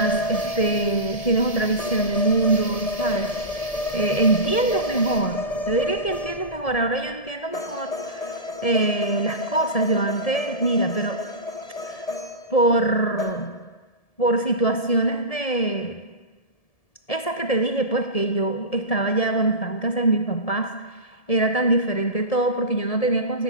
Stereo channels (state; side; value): late; right; 1.7 ms